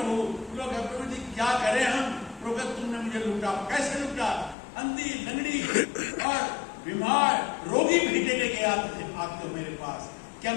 लोग प्रभु जी क्या करें हम, प्रभु तुमने मुझे लूटा, कैसे लूटा? अंधी, लंगड़ी और बीमार, रोगी भेंटे लेके आते हो मेरे पास। क्या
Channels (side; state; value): right; drops out; at 4.5 s